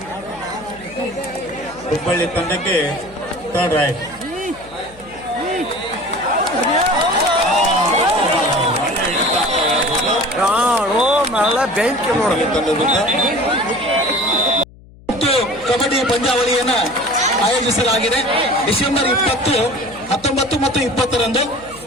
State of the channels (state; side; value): noise; left; hum, 23 dB below the sound